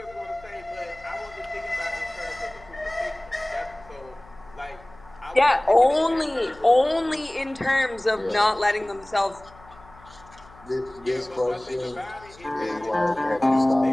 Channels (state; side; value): noise; left; hum, 23 dB below the sound